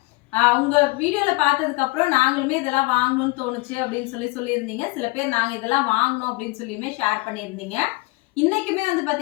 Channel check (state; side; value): quieter; right; 23.7 dB